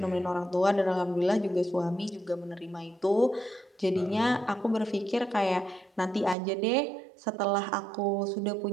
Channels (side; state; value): left; drops out; at 6.4 s